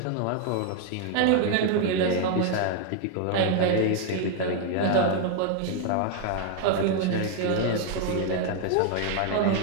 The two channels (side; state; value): both; different; correlation 0.00